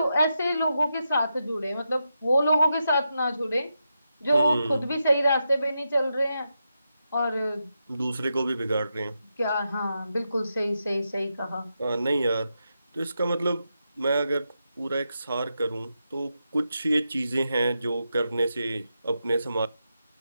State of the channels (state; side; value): inverted; both; correlation -0.86